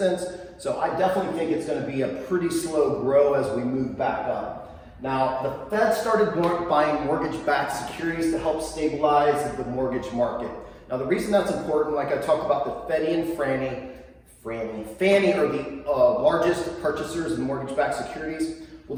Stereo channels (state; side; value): identical; both; correlation 1.00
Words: So I definitely think it's going to be a pretty slow grow as we move back up. Now, the Fed started buying mortgage-backed securities to help stabilize the mortgage market. Now, the reason that's important, like I talked about, the Freddie and Fannie are the largest purchasers of mortgage-backed securities. Well,